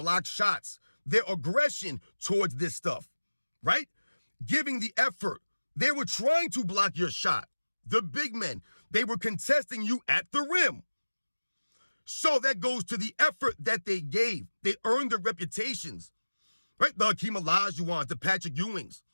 shots, their aggression towards this stuff, right? Giving the effort. They were trying to block your shot. The big men, they were contesting you at the rim. So that goes to the effort that they gave. They earned their reputations, right? The Hakeem Olajuwons, the Patrick Ewings,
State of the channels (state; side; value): inverted; both; correlation -1.00